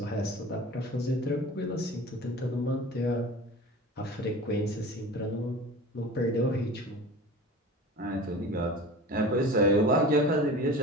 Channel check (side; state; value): both; normal; correlation 0.37